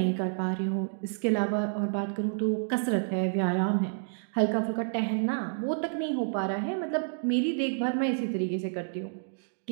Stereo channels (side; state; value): left; silent; digital silence